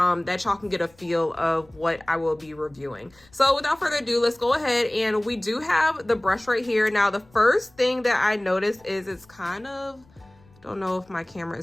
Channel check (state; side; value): noise; left; rumble, 29 dB below the sound